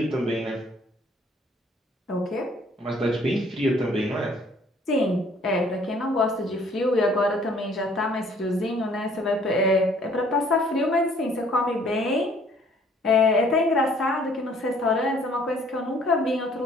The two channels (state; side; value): normal; both; correlation 0.59